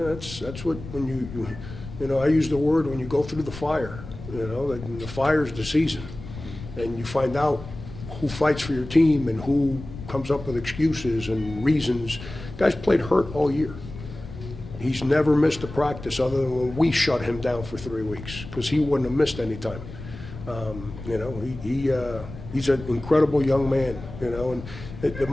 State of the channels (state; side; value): noise; left; rumble, 13 dB below the sound